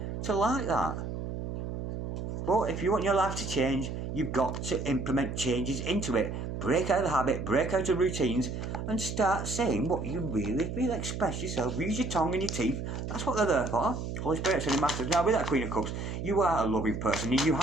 to like that. But if you want your life to change, you've got to implement changes into it. Break out of the habit, break out of routines, and start saying what you really feel. Express yourself, use your tongue and your teeth. That's what they're there for. Holy Spirit, Sending Masters. Now, with that Queen of Cups, you are a loving person, and you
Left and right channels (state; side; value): noise; right; hum, 5 dB below the sound